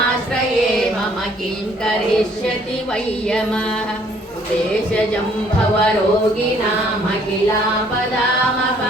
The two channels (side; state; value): both; normal; correlation 0.62